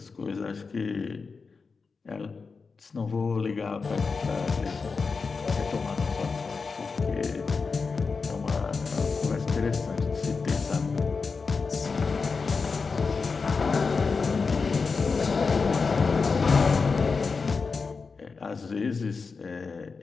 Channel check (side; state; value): right; quieter; 4.7 dB